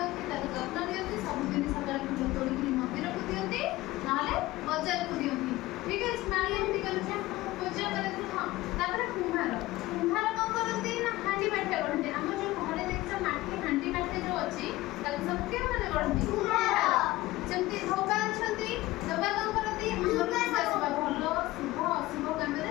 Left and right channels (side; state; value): right; quieter; 18.3 dB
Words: ତାକୁ ଯତ୍ନ ଦିଅନ୍ତି, ସବୁଦିନ ସକାଳେ ଫୁଲ ତୋଳିକି ମନ୍ଦିରକୁ ଦିଅନ୍ତି, ନହେଲେ ବଜାରକୁ ଦିଅନ୍ତି। ଠିକ୍ ଅଛି, ମାଳି ଏମିତି କରନ୍ତି, ପୂଜା କରନ୍ତି। ହଁ, ତାପରେ କୁମ୍ଭାର କ'ଣ କରନ୍ତି ନା ହାଣ୍ଡି ମାଠିଆ ଗଢ଼ନ୍ତି। ଆମର ଯେଉଁ ଘରେ ଦେଖିଛ ମାଟି ହାଣ୍ଡି ମାଠିଆ ଯେଉଁ ଅଛି ତାକୁ ସବୁ କେଉଁମାନେ ଗଢ଼ନ୍ତି, ସେମିତି ଧୋବା ଅଛନ୍ତି, ଧୋବା କ'ଣ କରନ୍ତି, ଆମର ଲୁଗା ସଫା, ଭଲ ଶୁଭ ଅଶୁଭ